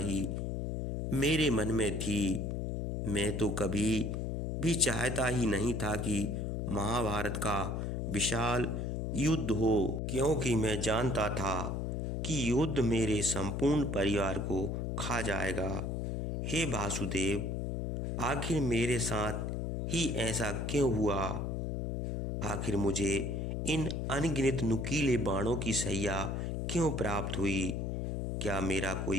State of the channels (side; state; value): left; noise; hum, 2 dB below the sound